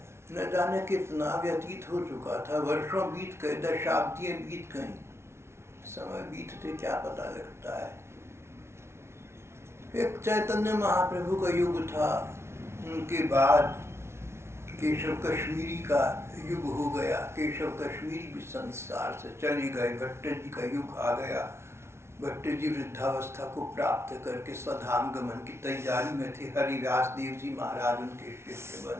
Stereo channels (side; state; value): left; late; 0.13 ms